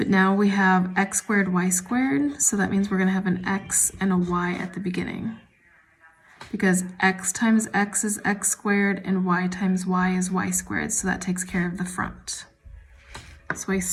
now we have x squared, y squared, so that means we're going to have an x and a y at the beginning. Because x times x is x squared and y times y is y squared, so that takes care of the front. So I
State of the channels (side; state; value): both; identical; correlation 1.00